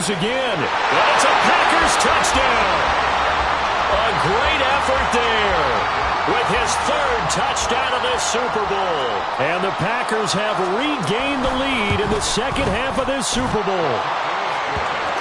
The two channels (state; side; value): identical; both; correlation 1.00